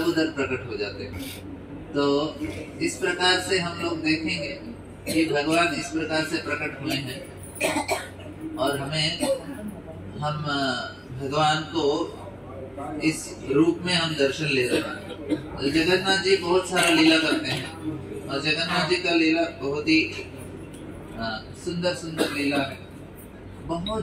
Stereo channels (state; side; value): identical; both; correlation 1.00